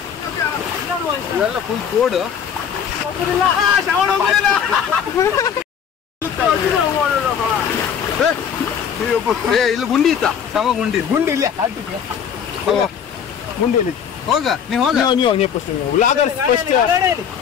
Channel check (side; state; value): right; quieter; 7.8 dB